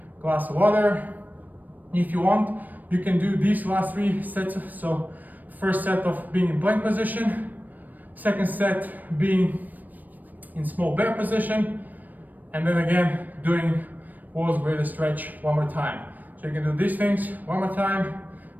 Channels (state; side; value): late; left; 0.085 ms